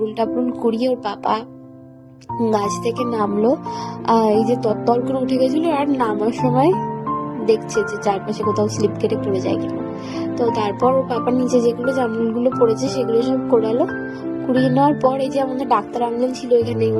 টামরুল কুড়িয়ে ওর পাপা গাছ থেকে নামলো। এই যে তত্তর করে উঠে গেছিল, আর নামার সময় দেখছে যে চারপাশে কোথাও স্লিপ কেটে পড়ে যায় কিনা। তো তারপর ওর পাপার নিচে যেগুলো জামরুলগুলো পড়েছে সেগুলো সব কোড়ালো। কুড়িয়ে নেওয়ার পর এই যে আমাদের ডাক্তার আঙ্কেল ছিল এখানে,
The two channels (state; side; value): identical; both; correlation 1.00